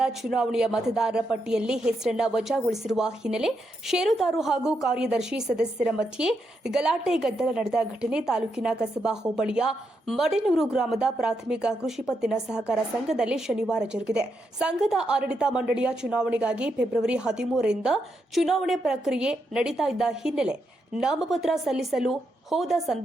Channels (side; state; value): both; normal; correlation 0.82